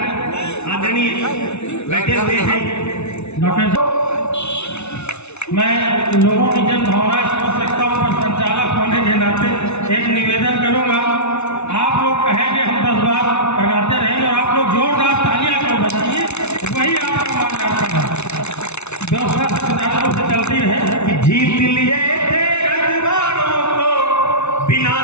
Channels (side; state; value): right; late; 0.81 ms